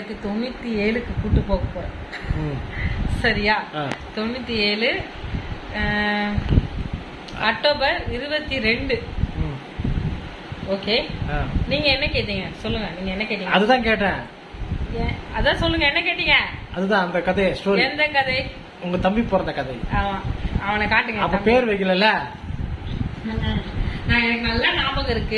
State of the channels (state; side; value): identical; both; correlation 1.00